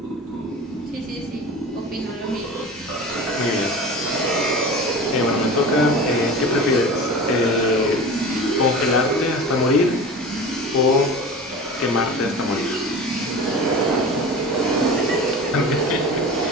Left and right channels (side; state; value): both; normal; correlation 0.34